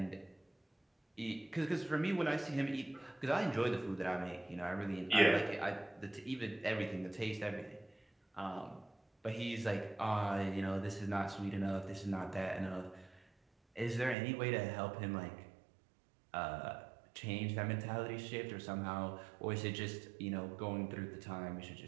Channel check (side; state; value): left; drops out; at 14.2 s